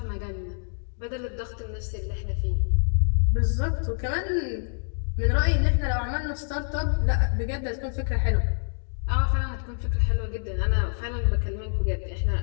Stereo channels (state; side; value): silent; right; digital silence